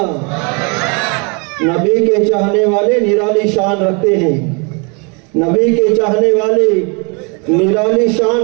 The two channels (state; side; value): quieter; left; 32.9 dB